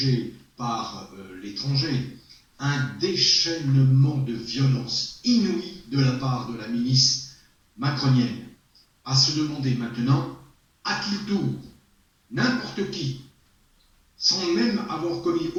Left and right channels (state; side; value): identical; both; correlation 1.00